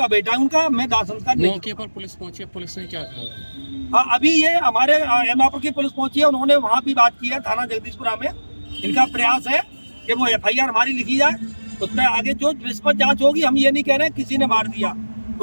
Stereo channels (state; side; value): inverted; both; correlation -1.00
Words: बेटा हूँ उनका, मैं दाह संस्कार नहीं। मौके पर पुलिस पहुंची, पुलिस ने क्या कहा? हाँ, अभी ये हमारे एतमादपुर की पुलिस पहुंची है, उन्होंने वहाँ भी बात की है थाना जगदीशपुरा में। इनका प्रयास है कि वो एफआईआर हमारी लिखी जाए, उसमें आगे जो निष्पक्ष जांच होगी। हम ये नहीं कह रहे हैं किसी ने मार दिया,